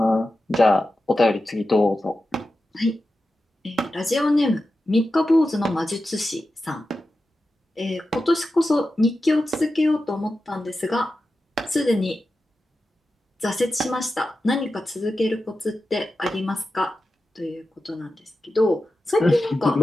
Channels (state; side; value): normal; both; correlation 0.92